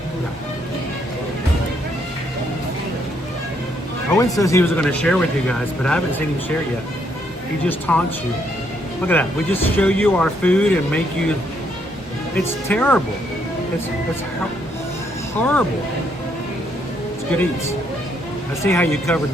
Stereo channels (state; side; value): normal; both; correlation 0.73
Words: No. Owen says he was going to share with you guys, but I haven't seen him share yet. He just taunts you. Look at that. We just show you our food and make you... It's terrible. It's horrible. It's good eats. I see how you covered